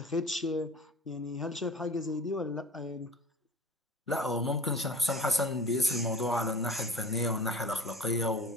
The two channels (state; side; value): normal; both; correlation 0.38